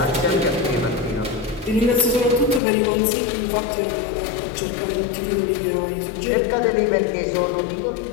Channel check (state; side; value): drops out; right; at 2.6 s